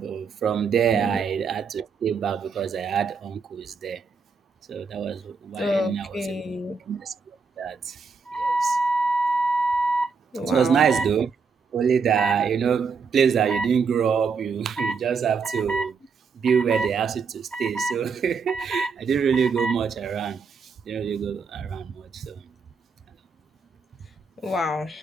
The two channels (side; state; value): left; quieter; 5.2 dB